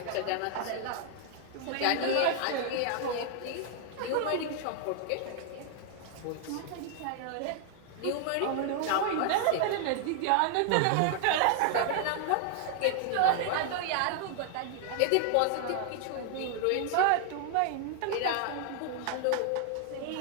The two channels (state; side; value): different; both; correlation 0.00